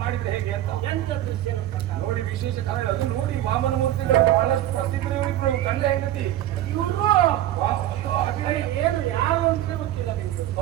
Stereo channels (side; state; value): left; quieter; 13.3 dB